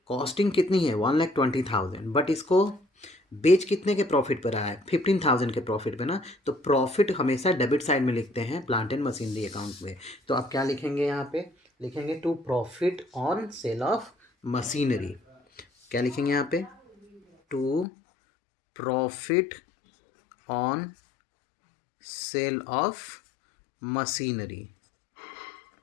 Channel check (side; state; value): right; drops out; at 17.9 s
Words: कॉस्टिंग कितनी है 1,20,000, बट इसको बेच कितने के प्रॉफिट पर आया है 15,000 के प्रॉफिट पे ना। तो प्रॉफिट हमेशा डेबिट साइड में लिखते हैं प्लांट एंड मशीनरी अकाउंट में। तो आप क्या लिखेंगे, यहाँ पे लिखेंगे to profit on sale of machinery. क्या लिखेंगे यहाँ पे, to profit on sale of machinery.